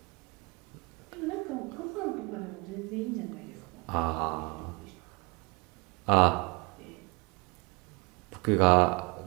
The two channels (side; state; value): left; quieter; 27.8 dB